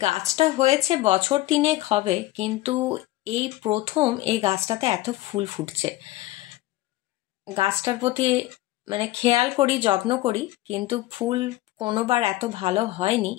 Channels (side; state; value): right; quieter; 17.1 dB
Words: গাছটা হয়েছে বছর 3 হবে, কিন্তু এই প্রথম এই গাছটাতে এত ফুল ফুটছে। গাছটার প্রতি মানে খেয়াল করি, যত্ন করি, কিন্তু ফুল কোনোবার এত ভালো হয়নি।